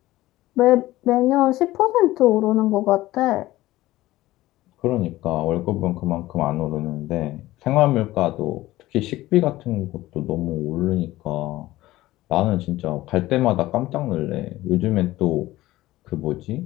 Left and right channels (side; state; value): right; quieter; 16.9 dB